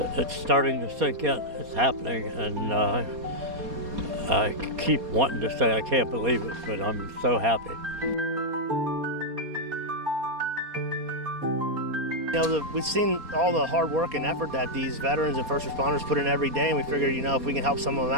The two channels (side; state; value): left; late; 4.2 ms